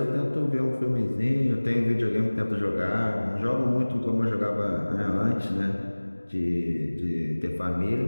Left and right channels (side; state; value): both; inverted; correlation -1.00